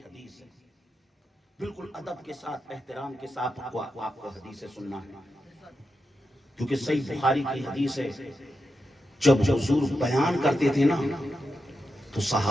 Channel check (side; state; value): both; normal; correlation 0.88